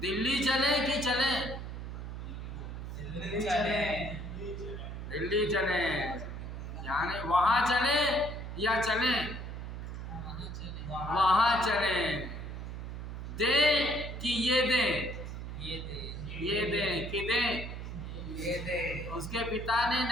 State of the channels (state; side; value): noise; right; hum, 7 dB below the sound